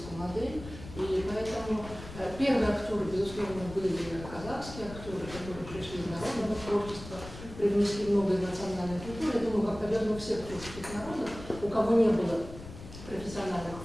модель. И поэтому первые актеры, безусловно, были казахские актеры, которые пришли из народного творчества, привнесли много из национальной культуры. Я думаю, как, наверное, у всех творческих народов, у кого не было профессиональных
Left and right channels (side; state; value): left; noise; rumble, 13 dB below the sound